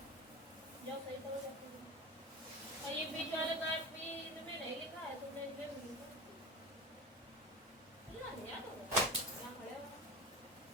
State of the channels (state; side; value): normal; both; correlation 0.29